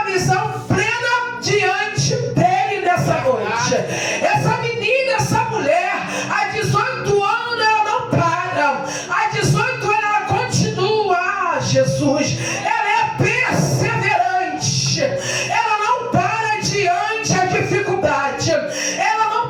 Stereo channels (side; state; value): both; identical; correlation 1.00